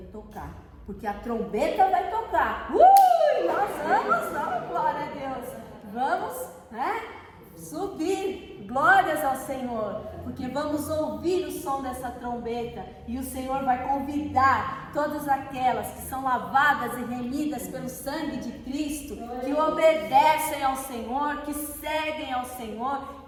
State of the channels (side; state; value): both; identical; correlation 1.00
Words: tocar. Porque a trombeta vai tocar. Nós vamos, glória a Deus. Vamos, né? Subir, glórias ao Senhor, porque vamos ouvir o som dessa trombeta e o Senhor vai convidar todas aquelas que são lavadas e remidas pelo sangue de Cristo, que obedecem ao Senhor, que seguem ao Senhor,